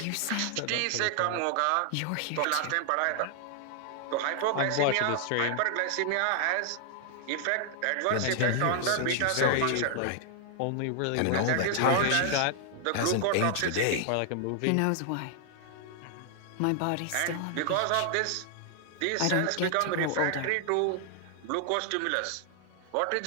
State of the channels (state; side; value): different; both; correlation 0.00